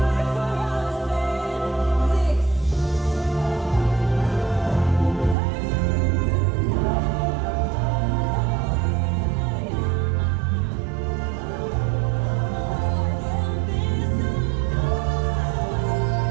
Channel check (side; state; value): left; drops out; at 5.4 s